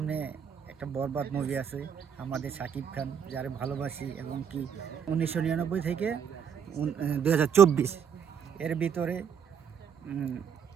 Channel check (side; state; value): left; quieter; 7.7 dB